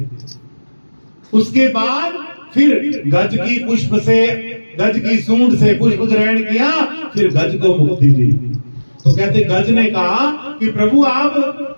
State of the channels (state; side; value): inverted; both; correlation -1.00